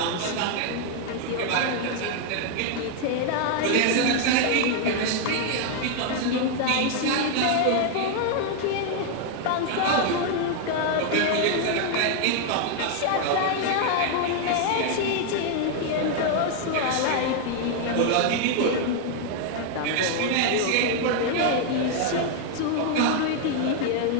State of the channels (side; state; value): both; different; correlation 0.00